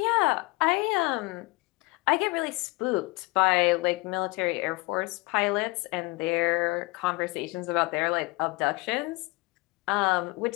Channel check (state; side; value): quieter; right; 24.7 dB